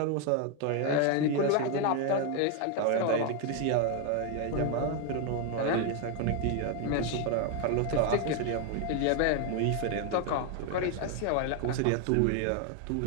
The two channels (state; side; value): different; both; correlation 0.01